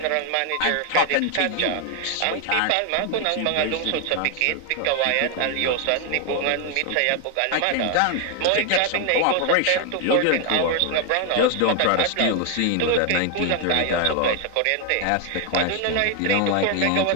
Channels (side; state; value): both; different; correlation 0.01